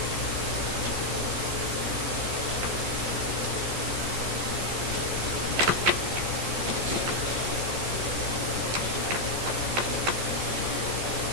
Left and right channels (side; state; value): left; late; 14 ms